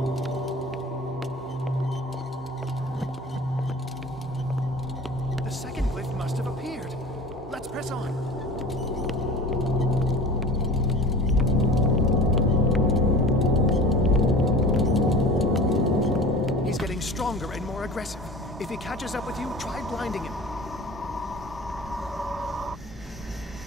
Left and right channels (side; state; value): both; normal; correlation 0.39